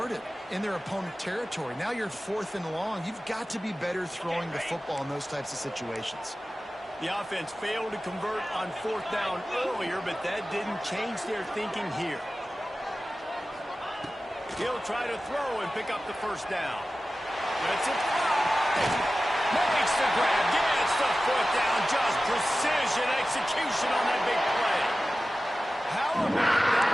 in their opponent territory. Now you're 4th and long. You've got to be better throwing the football in those types of situations. The offense failed to convert on 4th down earlier, but that didn't change their thinking here. He'll try to throw and pick up the first down. That's it. Makes the grab, gets the foot down, just precision execution on that big play. How about that?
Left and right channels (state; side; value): normal; both; correlation 0.95